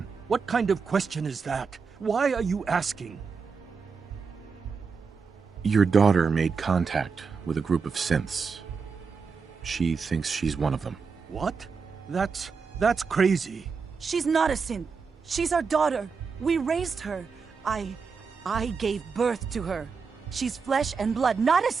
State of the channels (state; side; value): quieter; left; 5.3 dB